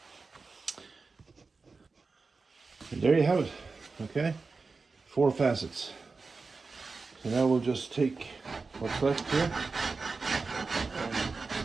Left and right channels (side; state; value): left; quieter; 4.2 dB